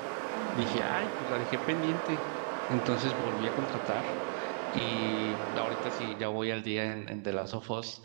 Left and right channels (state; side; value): silent; left; digital silence